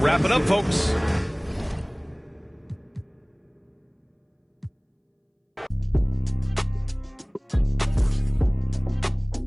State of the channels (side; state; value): both; identical; correlation 1.00